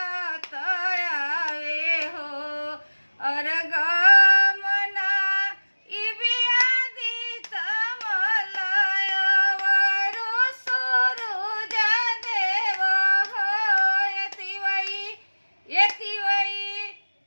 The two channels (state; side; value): inverted; both; correlation -1.00